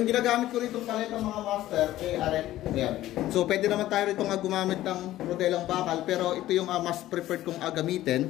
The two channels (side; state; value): right; quieter; 14.6 dB